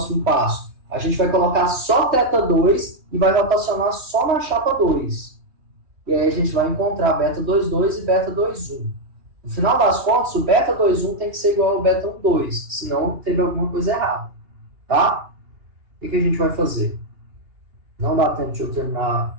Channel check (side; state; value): left; late; 2.9 ms